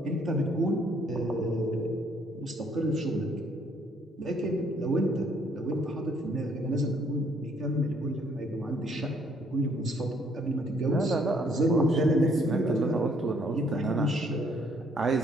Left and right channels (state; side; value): normal; both; correlation 0.65